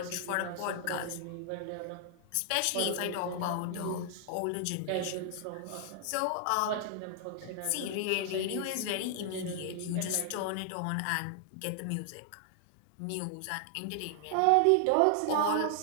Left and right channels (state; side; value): different; both; correlation 0.00